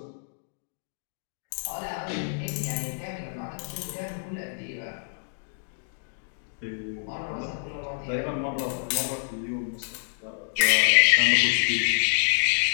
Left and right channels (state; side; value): silent; right; digital silence